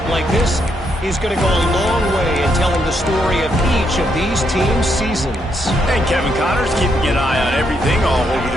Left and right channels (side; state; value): both; normal; correlation 0.77